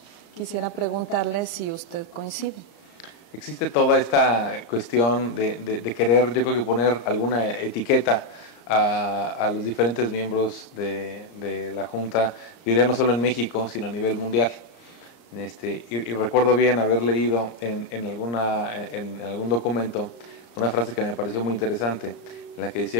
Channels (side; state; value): right; late; 34 ms